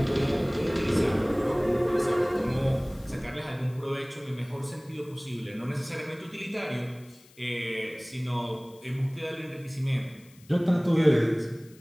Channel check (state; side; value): noise; left; hiss, 26 dB below the sound